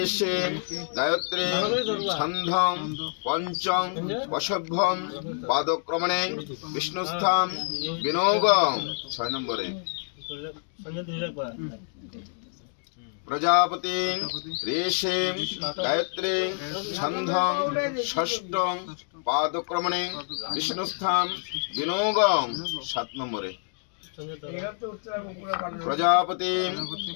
গায়ত্রী ছন্দং পঞ্চম বশভ্যম পাদক্রমণে বিষ্ণুস্থান বিনোগ 6 নম্বরে প্রজাপতি ঋষি গায়ত্রী ছন্দং ষষ্ঠং পাদক্রমণে বিষ্ণুস্থান বিনোগ 7 নম্বরে প্রজাপতি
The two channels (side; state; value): right; silent; 60 dB below the other